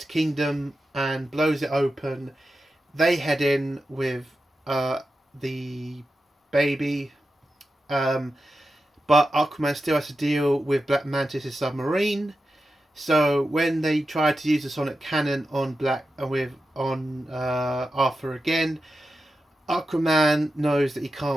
kingdom and blows it open. They head in with the baby, but Aquaman still has to deal with Black Mantis' submarine. So when they try to use the sonic cannon on Arthur again, Aquaman knows that he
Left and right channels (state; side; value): normal; both; correlation 0.90